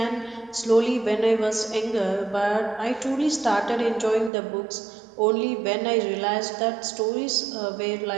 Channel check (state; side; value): drops out; left; at 4.3 s